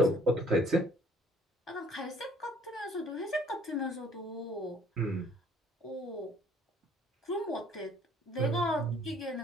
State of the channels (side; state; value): both; normal; correlation 0.58